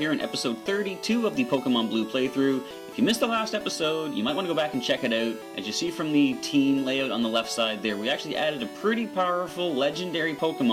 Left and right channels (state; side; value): identical; both; correlation 1.00